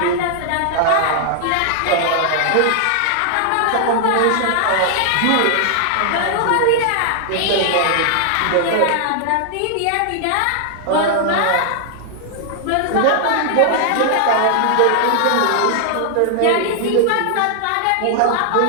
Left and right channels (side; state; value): both; different; correlation 0.00